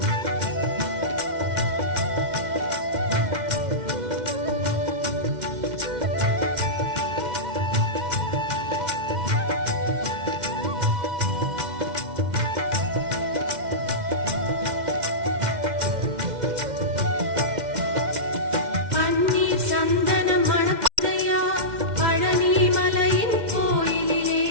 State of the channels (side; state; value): left; late; 2.1 ms